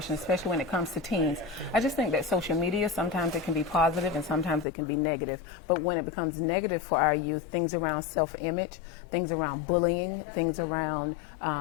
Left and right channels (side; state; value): right; drops out; at 4.7 s